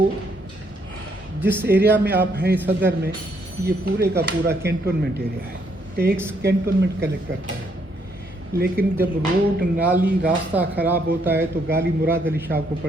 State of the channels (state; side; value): normal; both; correlation 0.71